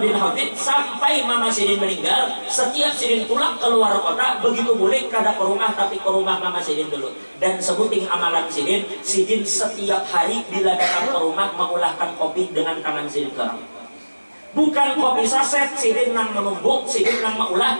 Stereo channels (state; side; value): inverted; both; correlation -1.00